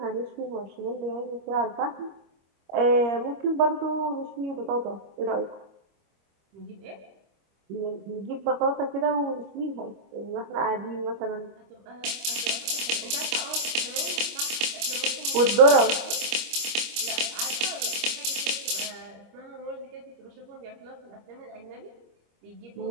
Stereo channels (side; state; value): left; late; 25 ms